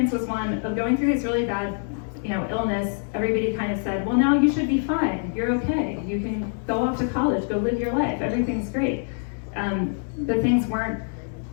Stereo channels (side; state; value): right; silent; 62 dB below the other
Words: was one of going through this really bad, illness. Everybody kind of said, well, now you should be fine. You're okay. You can go off to college, go live your life. Everything's great. But things weren't